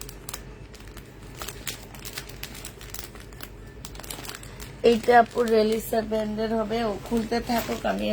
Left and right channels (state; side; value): identical; both; correlation 1.00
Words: এইটা আপু রেলিসা ব্র্যান্ডের হবে। ও খুলতে থাকুক, আমি